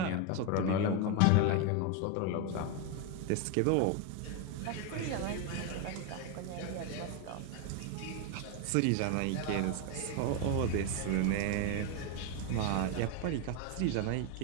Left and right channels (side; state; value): both; different; correlation 0.02